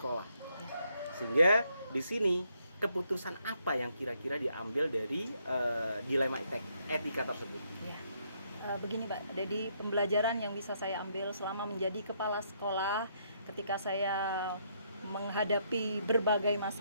Sehingga di sini keputusan apa yang kira-kira diambil dari dilema etika tersebut? Ya. Begini Pak, jadi pembelajaran yang bisa saya ambil selama menjadi kepala sekolah ketika saya menghadapi berbagai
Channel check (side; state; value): both; inverted; correlation -0.73